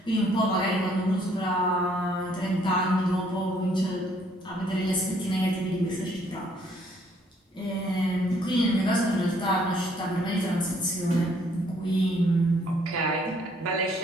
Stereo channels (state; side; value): normal; both; correlation 0.65